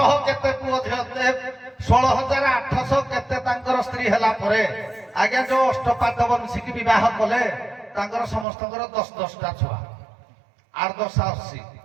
କେତେ ପୁଅ ଝିଅ, 16,800 କେତେ ତାଙ୍କର ସ୍ତ୍ରୀ ହେଲା ପରେ ଆଜ୍ଞା ଯୋଉ ଅଷ୍ଟପାଦ ବଂଶୀକି ବିବାହ କଲେ ତାଙ୍କର ସମସ୍ତଙ୍କର 10-10ଟା ଛୁଆ, 8-10-80।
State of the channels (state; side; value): drops out; left; at 8.5 s